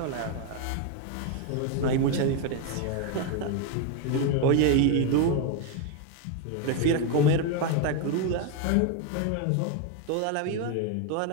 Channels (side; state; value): both; different; correlation 0.02